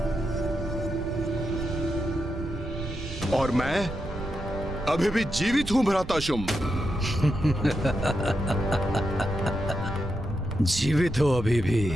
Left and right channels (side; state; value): right; noise; rumble, 9 dB below the sound